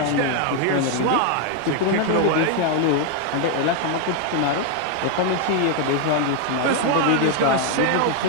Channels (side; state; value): both; different; correlation 0.00